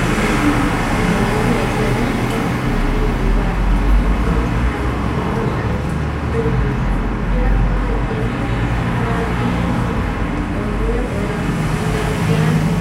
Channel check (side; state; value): both; identical; correlation 1.00